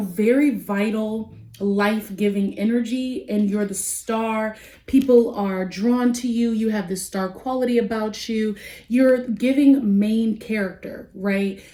vital, life-giving energy, and you're the star. People are drawn to you. You have this star quality about you. You're giving main character, right?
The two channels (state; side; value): identical; both; correlation 1.00